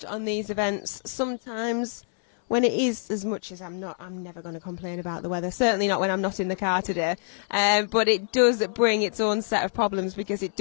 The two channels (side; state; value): right; silent; 61 dB below the other